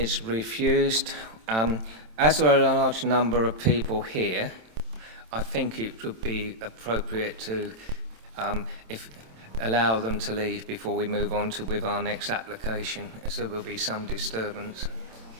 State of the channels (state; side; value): late; left; 27 ms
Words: refused. As there are a large number of people here, I think it would be appropriate to allow them to leave before we move on with our next application, as there will be some disturbance.